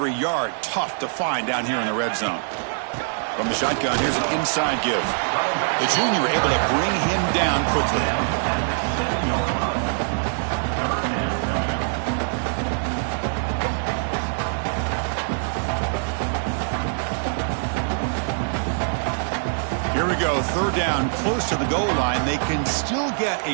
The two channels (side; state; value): left; silent; digital silence